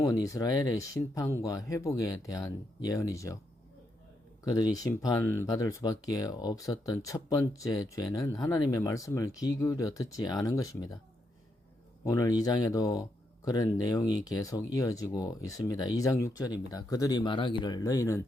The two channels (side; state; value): both; normal; correlation 0.80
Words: 이스라엘의 심판과 회복에 대한 예언이죠. 그들이 심판받을 수밖에 없었던 첫 번째 죄는 하나님의 말씀을 귀 기울여 듣지 않은 것입니다. 오늘 2장에도 그런 내용이 계속 이어지고 있습니다. 2장 6절입니다. 그들이 말하기를 너희는